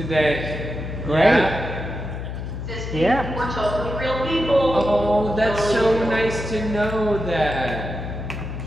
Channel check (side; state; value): left; noise; hum, 6 dB below the sound